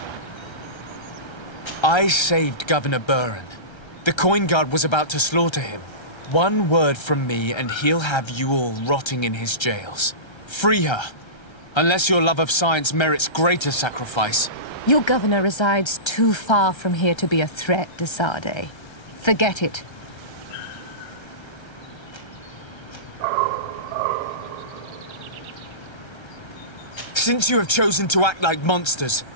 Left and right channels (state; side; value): late; right; 1.3 ms